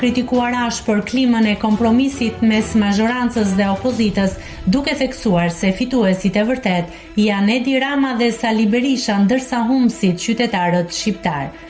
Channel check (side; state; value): both; identical; correlation 1.00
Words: ashpër klimën e kompromisit mes mazhorancës dhe opozitës, duke theksuar se fituesit e vërtet janë Edi Rama dhe Sali Berisha, ndërsa humbësit qytetarët shqiptar.